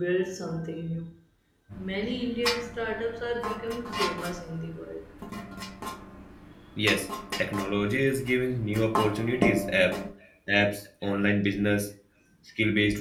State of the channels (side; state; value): both; identical; correlation 1.00